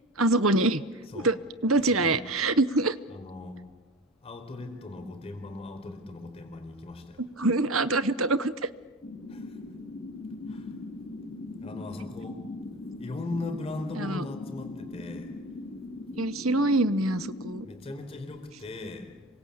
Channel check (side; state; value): both; normal; correlation 0.31